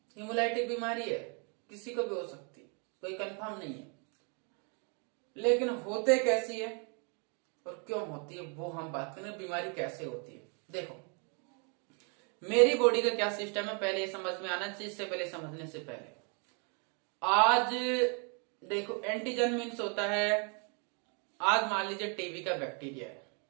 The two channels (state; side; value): quieter; left; 37.1 dB